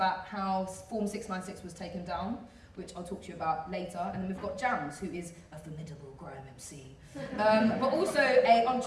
how Form 696 was taken down, which I'll talk to you about later. And then we've got Jammz, who is a formidable grime MC, but also an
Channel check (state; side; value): identical; both; correlation 1.00